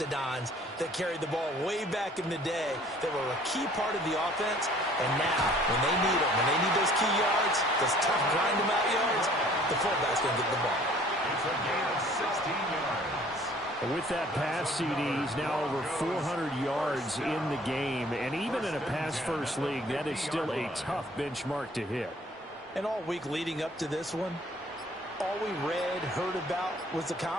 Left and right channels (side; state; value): both; normal; correlation 0.55